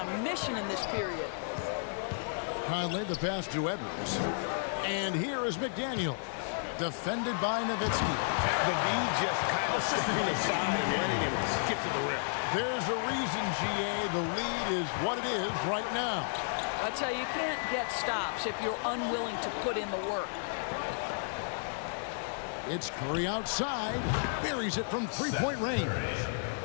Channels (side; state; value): right; silent; digital silence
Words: mission in this period. Conley, the pass to Edwards. And here is McDaniel. Defended by Nowitzki. The D just kind of stepping aside and letting him get to the rim. There's a reason, GA, the lead is what it is right now. I tell you, you can't get stops if you're unwilling to put in the work. It's Curry outside. Buries it from three-point range.